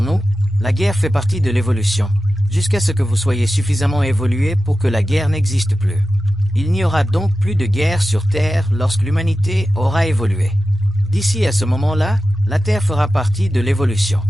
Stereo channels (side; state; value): both; normal; correlation 0.93